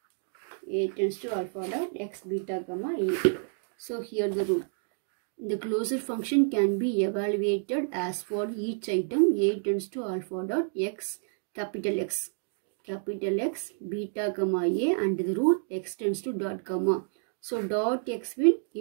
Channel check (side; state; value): left; silent; digital silence